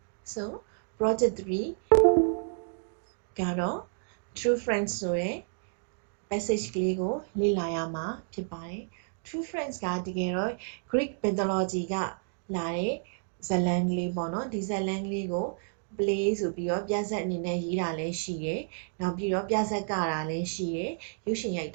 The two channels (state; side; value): silent; left; digital silence